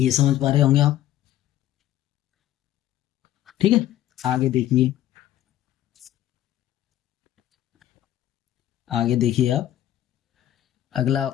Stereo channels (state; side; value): quieter; right; 13.0 dB